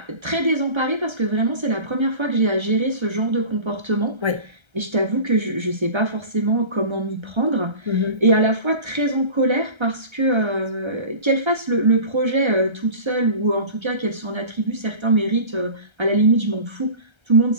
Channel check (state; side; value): late; left; 1.3 ms